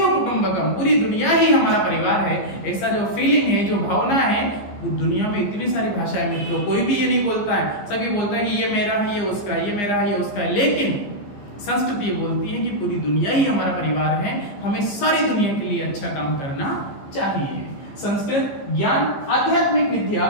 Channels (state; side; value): late; right; 15 ms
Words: कुटुंबकम, पूरी दुनिया ही हमारा परिवार है, ऐसा जो फीलिंग है, जो भावना है। दुनिया में इतनी सारी भाषाएं मित्रों, कोई भी ये नहीं बोलता है। सभी बोलता है कि ये मेरा है, ये उसका है, ये मेरा है, ये उसका है, लेकिन संस्कृत ये बोलती है कि पूरी दुनिया ही हमारा परिवार है, हमें सारी दुनिया के लिए अच्छा काम करना चाहिए। संस्कृत ज्ञान, आध्यात्मिक विद्या